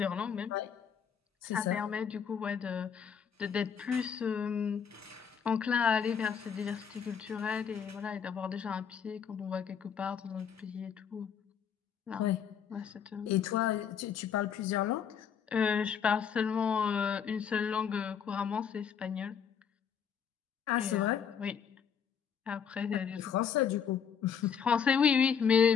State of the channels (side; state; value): right; quieter; 7.4 dB